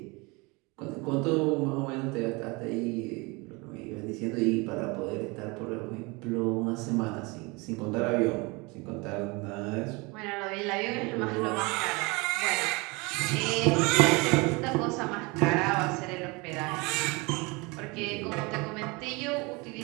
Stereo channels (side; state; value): left; quieter; 26.6 dB